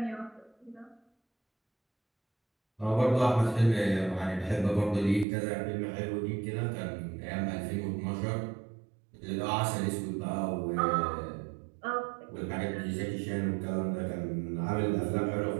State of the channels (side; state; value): left; drops out; at 5.2 s